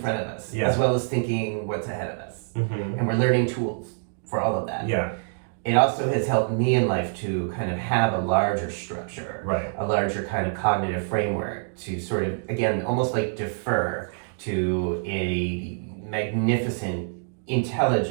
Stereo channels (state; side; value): silent; left; digital silence